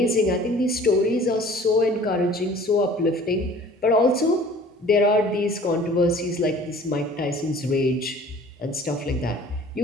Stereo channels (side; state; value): both; normal; correlation 0.49